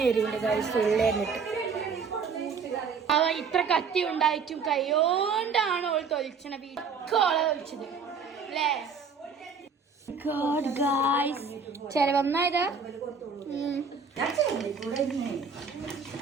ഉള്ളേറിട്ട്. അവ ഇത്ര കത്തി ഉണ്ടായിട്ടും കൈയോണ്ടാണ് ഓൾ തൊലിച്ചണ വീട്ടോളെ തൊലിച്ചത് അല്ലേ? ചെലവന്നായതാ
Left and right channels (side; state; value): left; quieter; 5.4 dB